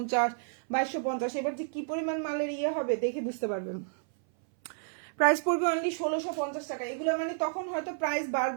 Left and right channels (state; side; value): silent; left; 57 dB below the other